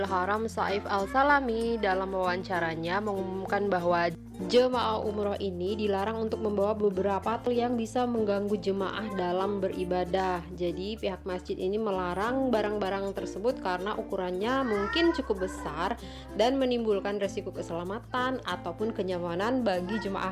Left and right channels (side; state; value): both; identical; correlation 1.00